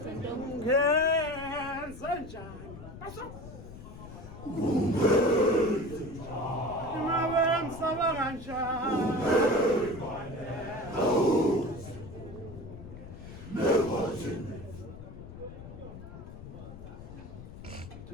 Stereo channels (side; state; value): left; noise; rumble, 13 dB below the sound